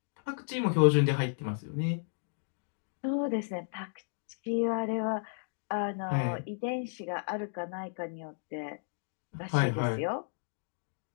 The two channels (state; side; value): silent; right; digital silence